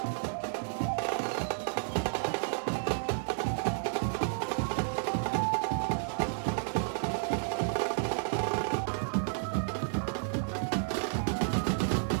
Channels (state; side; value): silent; left; digital silence